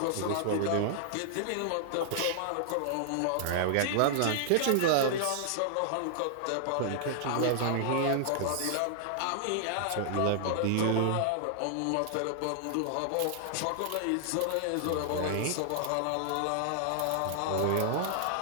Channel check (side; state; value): both; different; correlation -0.01